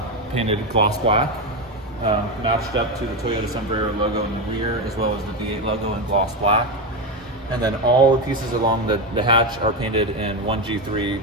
painted gloss black. Matched up to the Toyota Sombrero logo in the rear, as well as the V8 logo in gloss black. And then all the pieces along the hatch are painted in 1G3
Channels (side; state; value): both; normal; correlation 0.13